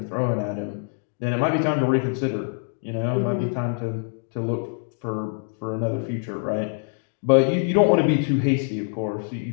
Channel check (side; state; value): right; silent; 59 dB below the other